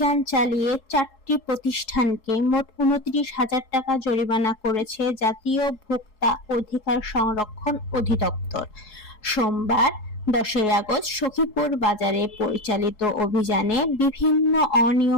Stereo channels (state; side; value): late; right; 4.7 ms